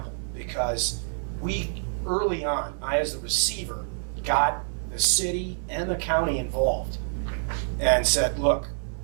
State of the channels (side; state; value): left; silent; 60 dB below the other